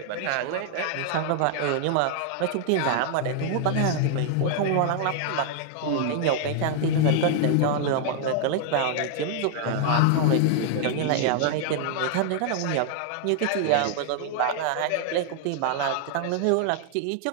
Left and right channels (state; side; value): different; both; correlation 0.00